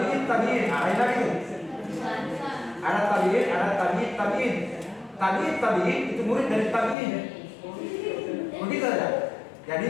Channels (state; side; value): drops out; right; at 7.0 s